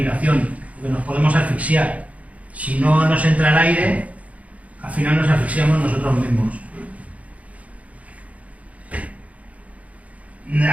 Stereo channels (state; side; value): late; left; 0.068 ms